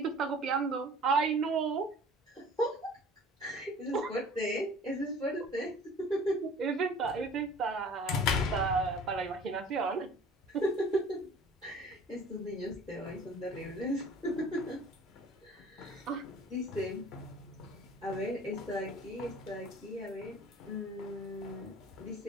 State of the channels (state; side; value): normal; both; correlation 0.47